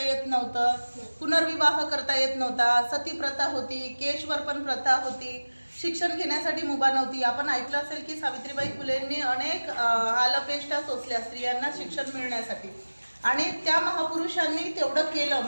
येत नव्हतं, पुनर्विवाह करता येत नव्हता, सती प्रथा होती, केशवरपण प्रथा होती, शिक्षण घेण्यासाठी मुभा नव्हती। आपण ऐकलं असेल की सावित्रीबाई फुलेंनी अनेक हालअपेष्टा सोसल्या स्त्रियांना शिक्षण मिळण्यासाठी, आणि त्या महापुरुषांनी तेवढं केलं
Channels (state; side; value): inverted; both; correlation -1.00